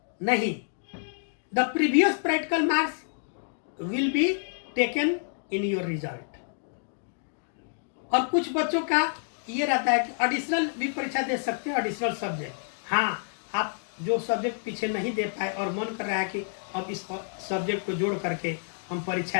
नहीं, the previous practical marks will be taken in your result. और कुछ बच्चों का ये रहता है कि एडिशनल भी परीक्षा दे सकते हैं, एडिशनल सब्जेक्ट। हाँ, आप जो सब्जेक्ट पीछे नहीं दे पाए और मन कर रहा है कि अब इस सब्जेक्ट को जोड़ करके हम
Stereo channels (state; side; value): silent; right; 59 dB below the other